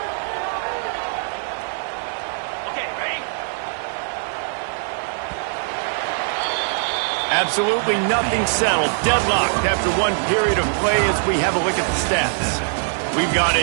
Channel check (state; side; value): silent; left; 55 dB below the other